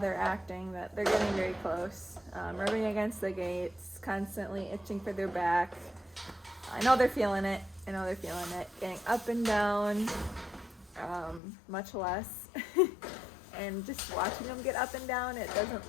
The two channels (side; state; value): right; drops out; at 11.4 s